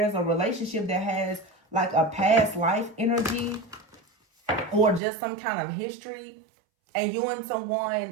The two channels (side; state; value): left; drops out; at 5.0 s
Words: a relationship that has like a past life energy or just some kind of history. And you and